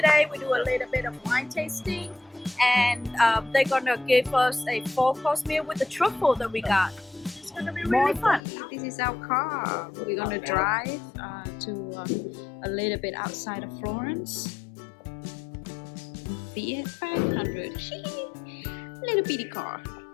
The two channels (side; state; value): right; drops out; at 8.4 s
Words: We do a little bit of wine tasting, and they're gonna give us a 4-course meal with the truffle that we got. It's gonna be really fun. This is our car. We're gonna drive to a little bit outside of Florence. Fiat 500. Little bitty car.